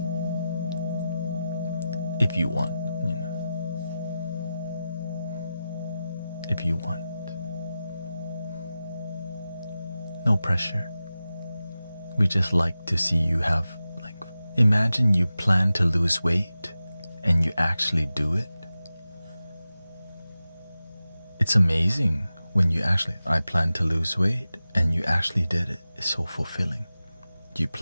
If you want, if you want. No pressure. We just like to see you have, imagine you plan to lose weight and you actually do it. It's amazing when I plan to lose weight and you actually did it. It's so fulfilling. You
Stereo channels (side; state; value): both; inverted; correlation -0.93